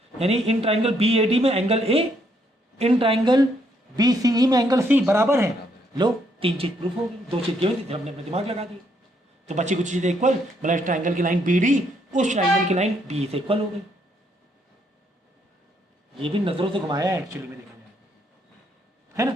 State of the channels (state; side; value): normal; both; correlation 0.72